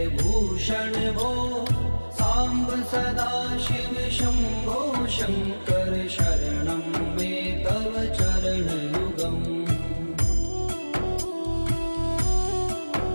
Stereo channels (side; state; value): both; inverted; correlation -1.00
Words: भूषण भो सांब सदा शिव शंभो शंकर शरणं मे तव चरणयुगम्